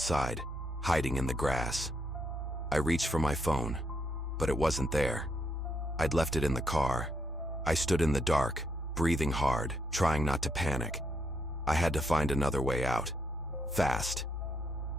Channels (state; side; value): normal; both; correlation 0.77